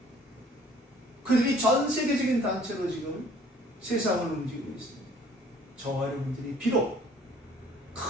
그들이 전 세계적인 단체로 지금 세상을 움직이고 있습니다. 저와 여러분들이 비록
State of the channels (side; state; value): both; normal; correlation 0.56